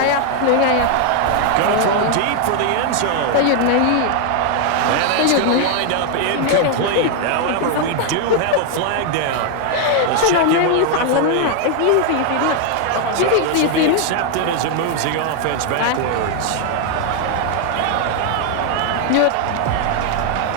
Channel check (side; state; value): both; different; correlation 0.00